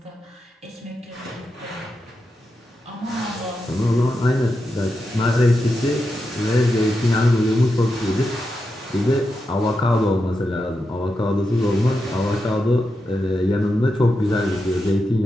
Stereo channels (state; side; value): normal; both; correlation 0.87